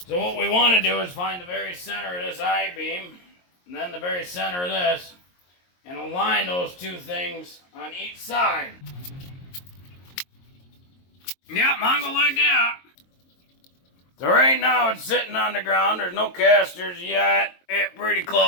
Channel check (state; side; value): late; right; 22 ms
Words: So what we want to do is find the very center of this I-beam, and then the very center of this, and align those 2 things on each side. Yeah, Mongo like that. So right now it's sitting on the ground. There's no casters yet. It's pretty